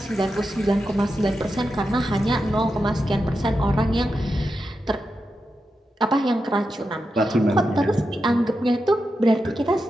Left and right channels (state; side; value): normal; both; correlation 0.88